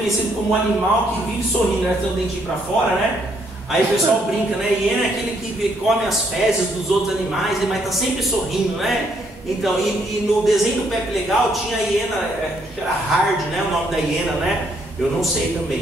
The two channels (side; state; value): both; normal; correlation 0.71